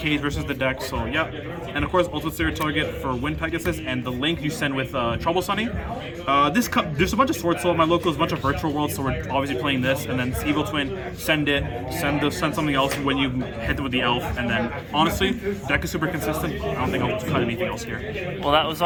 versus the deck. So yeah, and of course Ultimate Slayer Target for Wind Pegasus, and the link you send with Trouble Sunny. There's a bunch of Sword Soul at my locals, a bunch of Virtual Worlds, so we're obviously playing this, and then Evil Twin, send something else when you hit it with the Elf, and then honestly, deck is super consistent. I don't think I'll cut anything else here. Well, that was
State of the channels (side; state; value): both; identical; correlation 1.00